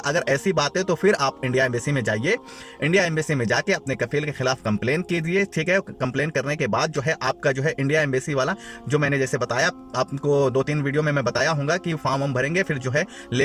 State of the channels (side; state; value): both; identical; correlation 1.00